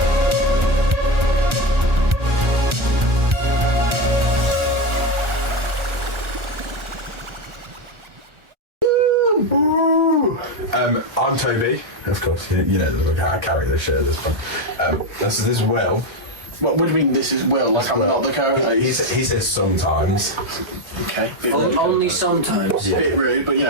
I'm Toby, of course. You know I carry this shit at this point. This is Will. What do you mean this is Will? Like I'm not the character? He says sometimes. Okay. Only sometimes. Yeah. Bit rude, but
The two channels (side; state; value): left; late; 1.4 ms